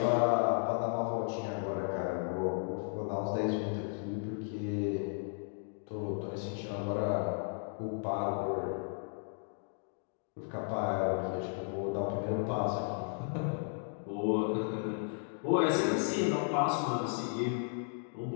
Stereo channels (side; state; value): right; silent; 55 dB below the other